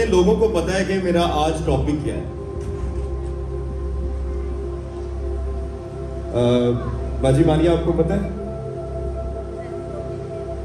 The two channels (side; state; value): both; identical; correlation 1.00